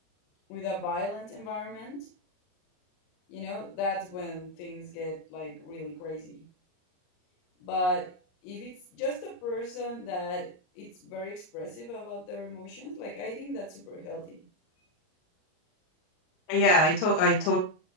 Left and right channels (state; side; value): late; right; 38 ms